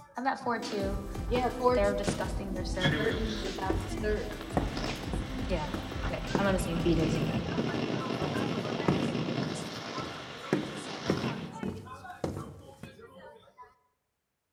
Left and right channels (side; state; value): both; identical; correlation 1.00